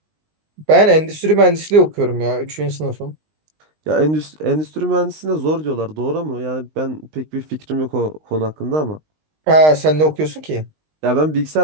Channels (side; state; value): left; late; 19 ms